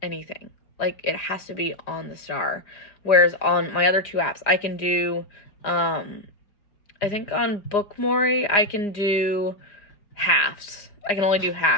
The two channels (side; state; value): right; late; 4.9 ms